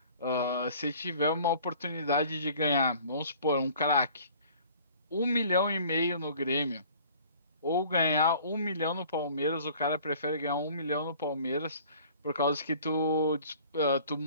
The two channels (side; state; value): both; inverted; correlation -0.50